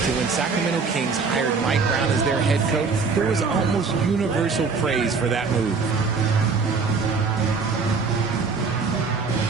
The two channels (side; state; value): left; quieter; 4.8 dB